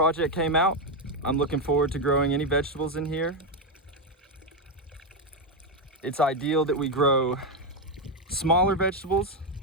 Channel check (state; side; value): normal; both; correlation 0.06